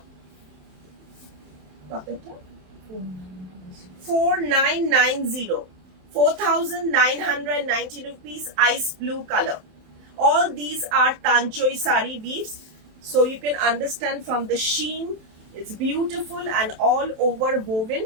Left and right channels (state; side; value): late; left; 27 ms